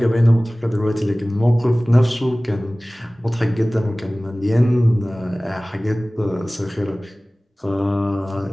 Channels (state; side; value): normal; both; correlation 0.98